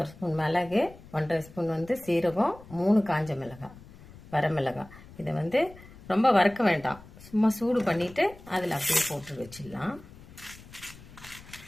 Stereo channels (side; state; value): left; noise; rumble, 20 dB below the sound